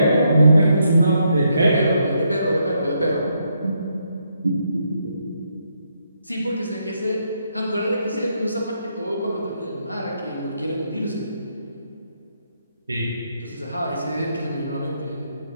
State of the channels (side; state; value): both; inverted; correlation -0.77